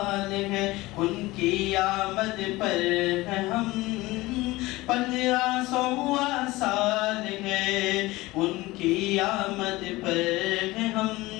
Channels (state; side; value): quieter; right; 19.8 dB